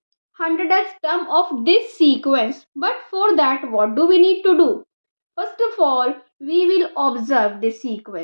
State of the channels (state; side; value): inverted; both; correlation -1.00